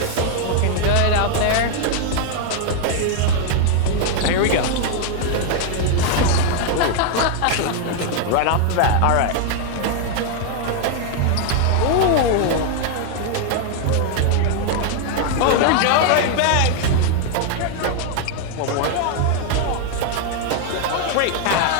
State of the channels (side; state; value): both; different; correlation 0.00